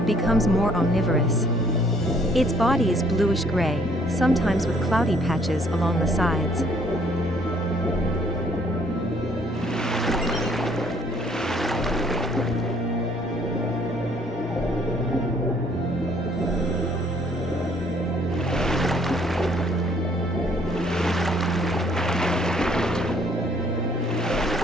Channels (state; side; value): normal; both; correlation 0.63